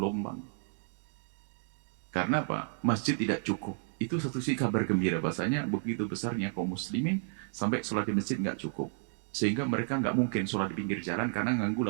Karena apa? Masjid tidak cukup. Itu satu sisi kabar gembira bahasanya begitu besarnya kaum muslimin sampai sholat di masjid nggak cukup. Sehingga mereka nggak mungkin sholat di pinggir jalan karena ganggu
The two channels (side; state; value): left; silent; 56 dB below the other